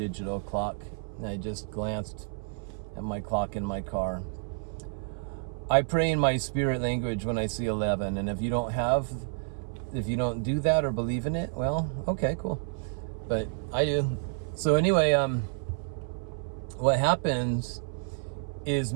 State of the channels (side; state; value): left; silent; 57 dB below the other